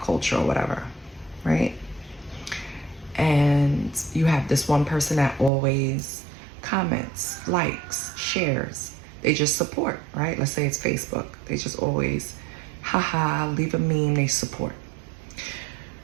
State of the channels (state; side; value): drops out; left; at 5.5 s